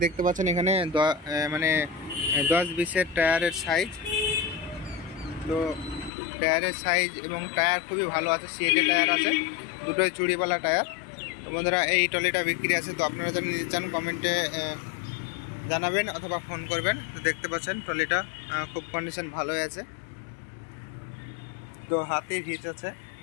দেখতে পাচ্ছেন এখানে 10-20-এর টায়ারের সাইজ। তো টায়ারের সাইজ এবং টায়ার খুবই ভালো আছে, সিএটের টায়ার আছে, দুটোই চুড়িওয়ালা টায়ার। তো বন্ধুরা, এই ট্রলিটা বিক্রি আছে। তো আপনারা যদি নিতে চান কমেন্টে জানাবেন অথবা ফোন করবেন। তো দেখতে পাচ্ছেন ট্রলিটা খুব কন্ডিশন ভালোই আছে। তো হাতে হিচ আছে।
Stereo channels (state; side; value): drops out; right; at 6.1 s